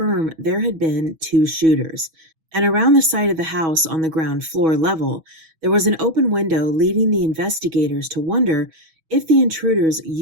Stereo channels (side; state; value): left; late; 6.2 ms